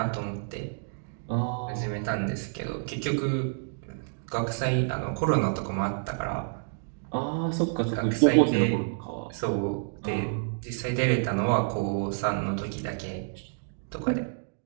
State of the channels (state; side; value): silent; left; digital silence